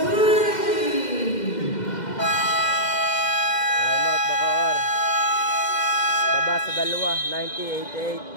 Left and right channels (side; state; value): right; late; 2.1 ms